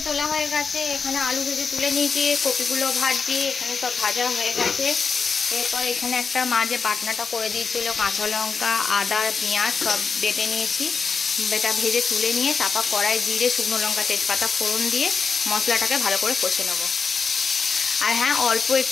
তোলা হয়ে গেছে, এখানে আলু ভেজে তুলে নিয়েছি, কপিগুলো ভাজছি, এখানে সব ভাজা হয়ে গেছে। এরপর এখানে একটা মা যে বাটনাটা করে দিয়েছিল, কাঁচা লঙ্কা আদা পেঁয়াজ সব বেটে নিয়েছি। বেটা ভেজে তুলে নিয়ে তারপর কড়াই জিরে শুকনো লঙ্কা তেজপাতা ফোড়ন দিয়ে মশলাটাকে ভালো করে কষে নেব। আর হ্যাঁ, অল্প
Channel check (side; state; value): right; quieter; 5.3 dB